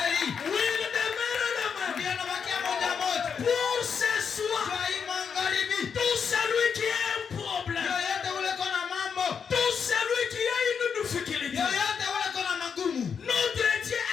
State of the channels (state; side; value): quieter; right; 6.6 dB